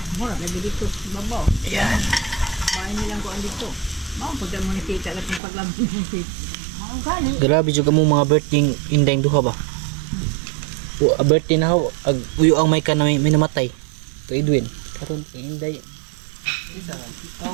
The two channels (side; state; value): left; drops out; at 5.4 s